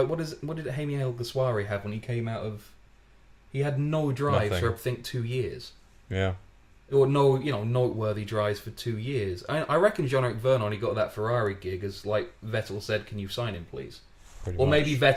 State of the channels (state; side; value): identical; both; correlation 1.00